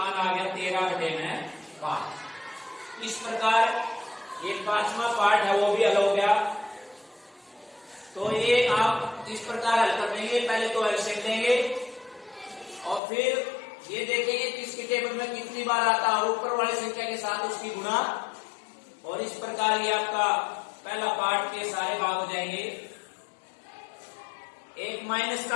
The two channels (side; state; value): right; drops out; at 13.0 s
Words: आ गया 13/5। इस प्रकार ये 5वां पार्ट है वो भी हल हो गया। तो ये आप इस प्रकार हल कर देंगे। पहले तो एलसीएम लेंगे, और फिर ये देखेंगे कि इसकी टेबल में कितनी बार आता है, और ऊपर वाली संख्या के साथ उसकी गुणा। और इस प्रकार ये आपका पहला पार्ट के सारे भाग हो जाएंगे। एक माइनस